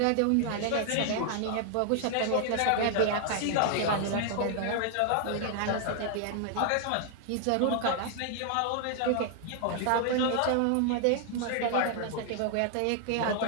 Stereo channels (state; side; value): different; both; correlation 0.00